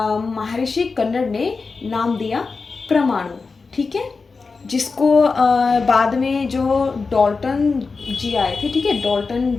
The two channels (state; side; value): quieter; right; 4.4 dB